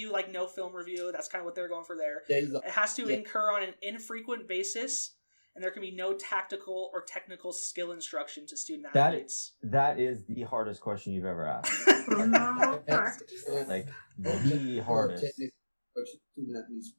like no film review. That's kind of what they're going for there. It has to incur on an infrequent basis and there can be no tactical or technical skill instruction to student That- athletes. That is the hardest question you've ever asked. For normal practice. Like the hardest.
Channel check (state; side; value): inverted; both; correlation -1.00